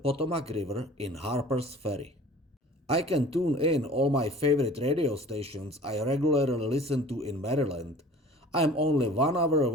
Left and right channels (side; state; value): both; normal; correlation 0.46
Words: River in Harper's Ferry. I can tune in all my favorite radio stations I regularly listen to in Maryland. I am only 1 hour